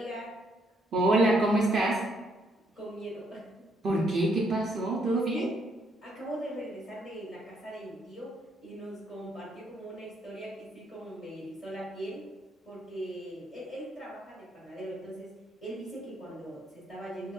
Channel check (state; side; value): normal; both; correlation 0.72